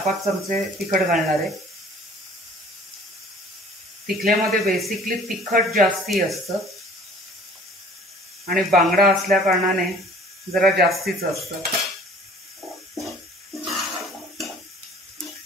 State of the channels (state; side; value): normal; both; correlation 0.51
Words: चमचे तिखट घालणार आहे। तिखल्यामध्ये बेसिकली तिखट जास्ती असतं आणि बांगडा असल्या कारणाने जरा जास्तीच असतं.